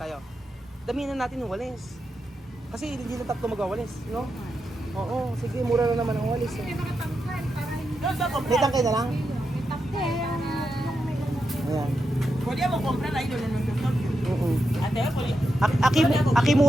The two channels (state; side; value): normal; both; correlation 0.86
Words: Damihan na natin yung walis. Kasi hindi na tatlo magwawalis, no? Oo, sige, mura lang naman ang walis. Eh. May tangkay na lang? Ayan. Pwede mo comprar ahí donde nos tocó. Oo. Ate, pwede. Aki